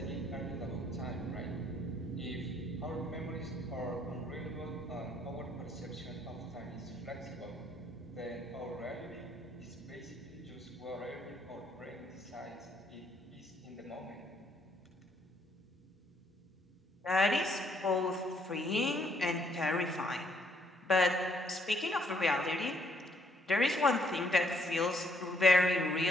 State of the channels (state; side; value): normal; both; correlation 0.69